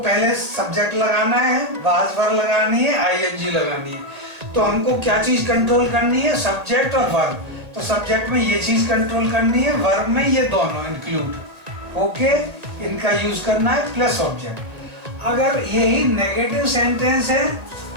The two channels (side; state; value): left; late; 1.9 ms